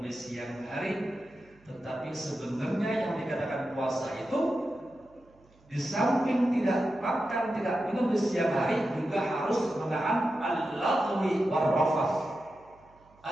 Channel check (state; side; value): noise; right; hum, 30 dB below the sound